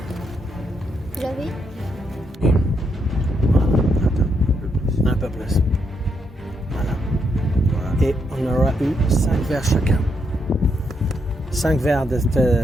Tu l'avais? Un peu plus. Voilà. Et on aura eu 5 verres chacun. 5 verres de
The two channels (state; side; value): normal; both; correlation 0.78